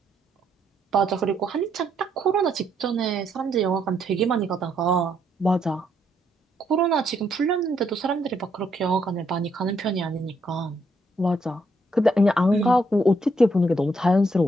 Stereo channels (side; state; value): both; normal; correlation 0.74